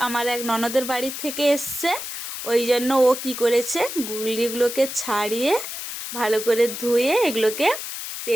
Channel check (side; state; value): left; noise; hiss, 7 dB below the sound